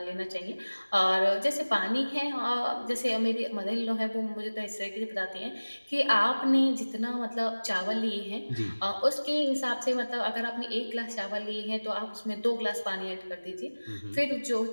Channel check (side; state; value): both; inverted; correlation -1.00